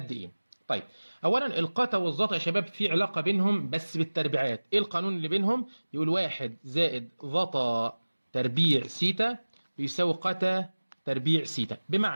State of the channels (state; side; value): inverted; both; correlation -1.00